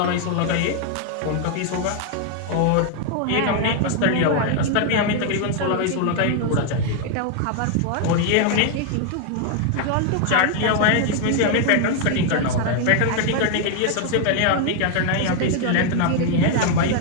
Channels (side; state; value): both; different; correlation 0.00